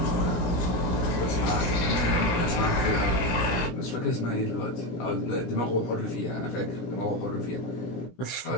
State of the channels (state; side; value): late; right; 17 ms